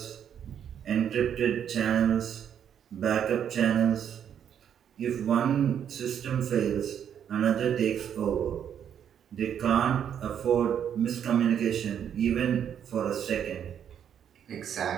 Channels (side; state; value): left; quieter; 8.9 dB